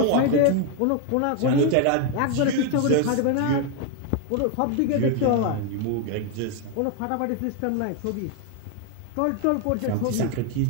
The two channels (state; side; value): different; both; correlation 0.01